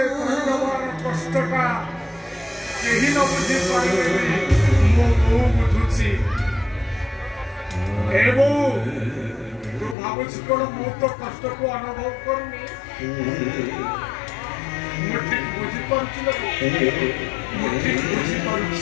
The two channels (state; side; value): drops out; right; at 10.0 s